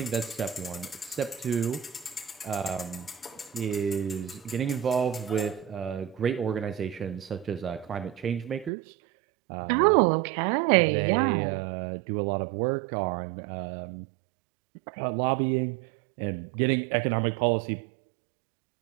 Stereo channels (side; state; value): left; drops out; at 8.7 s